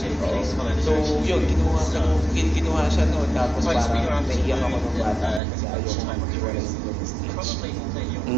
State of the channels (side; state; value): left; drops out; at 5.4 s